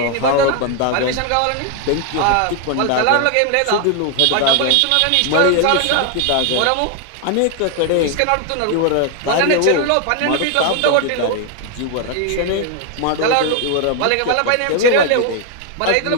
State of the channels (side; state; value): both; different; correlation 0.01